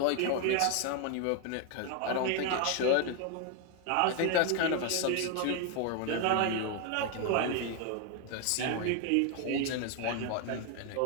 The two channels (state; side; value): different; both; correlation 0.01